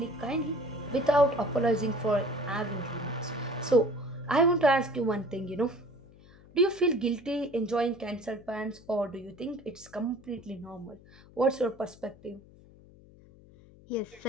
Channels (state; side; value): noise; left; hum, 23 dB below the sound